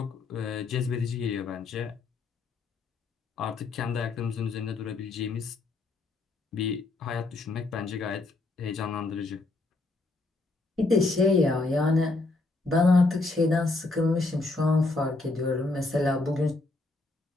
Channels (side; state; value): right; quieter; 3.3 dB